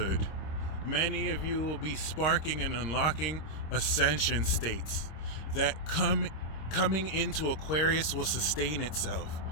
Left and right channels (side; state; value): right; late; 26 ms